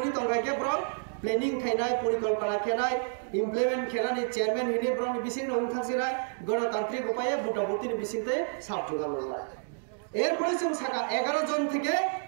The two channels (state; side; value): silent; left; digital silence